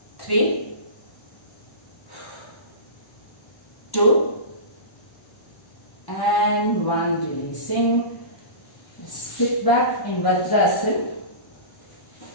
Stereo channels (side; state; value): right; late; 1.1 ms